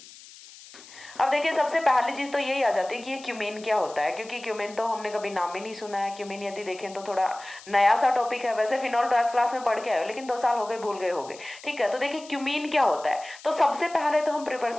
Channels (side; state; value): left; noise; hiss, 19 dB below the sound